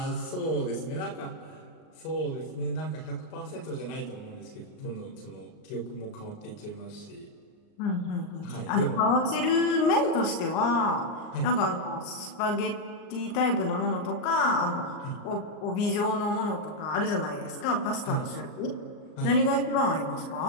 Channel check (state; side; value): late; right; 39 ms